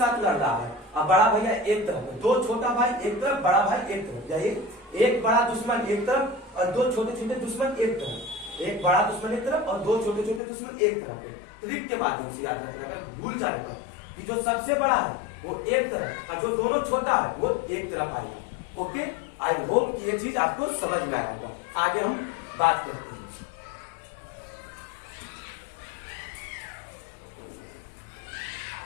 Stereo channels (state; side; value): drops out; right; at 10.4 s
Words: लड़ रहा है। अब बड़ा भैया एक तरफ, दो छोटा भाई एक तरफ, बड़ा भाई एक तरफ, या एक बड़ा दुश्मन एक तरफ और दो छोटे छोटे दुश्मन एक तरफ, एक बड़ा दुश्मन एक तरफ और दो छोटे छोटे दुश्मन एक तरफ। ट्रिक के माध्यम से याद रखना, अगर भूल जाए तो कि जो सबसे बड़ा है वो एक तरफ और जो दोनों छोटा है वो एक तरफ आएगा। ओके, आई होप ये चीज आपको समझ में आया होगा। आगे हम बात करते हैं।